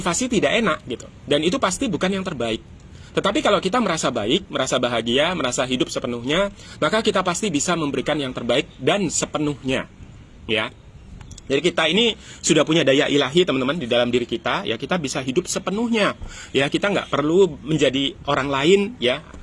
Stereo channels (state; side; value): identical; both; correlation 1.00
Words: tidak enak, gitu. Dan itu pasti bukan yang terbaik. Tetapi kalau kita merasa baik, merasa bahagia, merasa hidup sepenuhnya, maka kita pasti bisa memberikan yang terbaik dan sepenuhnya. Ya, jadi kita ini sudah punya daya ilahi, teman-teman, di dalam diri kita. Ya, kita bisa hidup sepenuhnya. Ya, kita nggak perlu menjadi orang lain, ya,